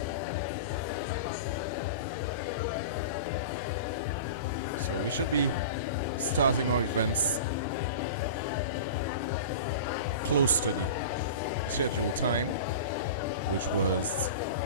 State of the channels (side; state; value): both; inverted; correlation -0.33